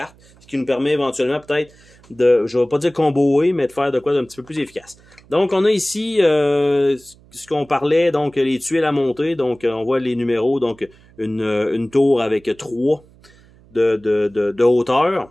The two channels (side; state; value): right; noise; hum, 27 dB below the sound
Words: ce qui nous permet éventuellement peut-être de, je ne vais pas dire comboer, mais de faire de quoi d'un petit peu plus efficace. Donc, on a ici ce qu'on parlait, donc les tuiles à monter. Donc, on voit les numéros, donc une tour avec 3 de